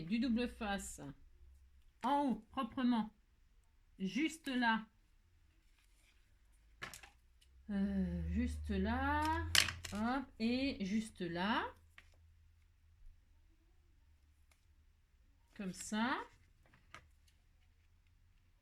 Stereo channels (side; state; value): both; identical; correlation 1.00